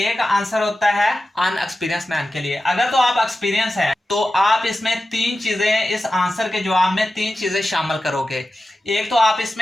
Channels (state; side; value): normal; both; correlation 0.93